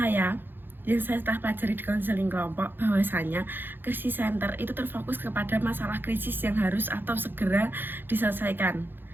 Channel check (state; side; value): late; left; 0.098 ms